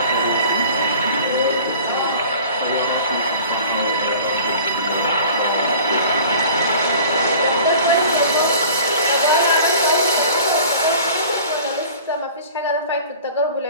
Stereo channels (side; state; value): both; inverted; correlation -0.45